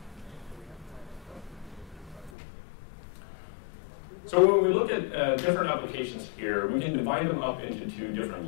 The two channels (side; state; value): right; drops out; at 2.3 s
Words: So when we look at different applications here, we can divide them up into two different